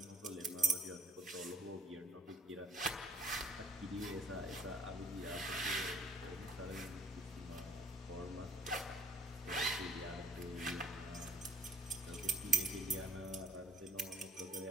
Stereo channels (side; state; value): both; normal; correlation 0.62